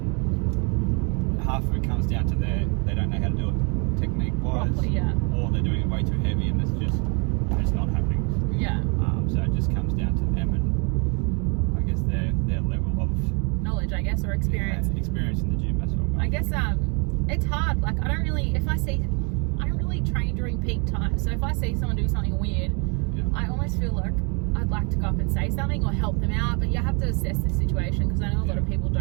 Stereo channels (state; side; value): quieter; left; 34.2 dB